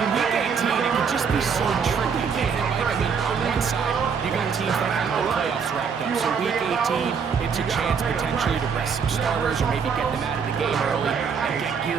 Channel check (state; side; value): quieter; left; 6.3 dB